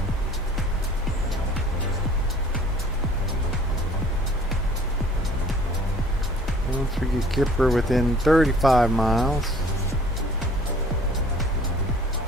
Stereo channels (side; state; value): both; normal; correlation 0.52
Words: Once we get Kipper within 35 miles.